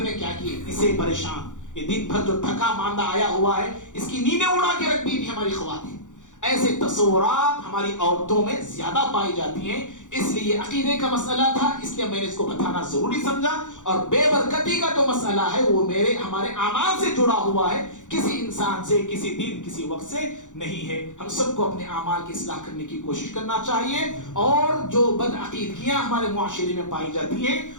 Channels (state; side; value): late; right; 0.86 ms